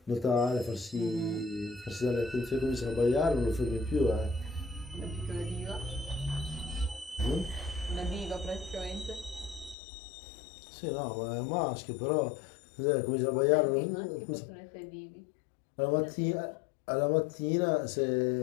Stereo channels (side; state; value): right; drops out; at 9.8 s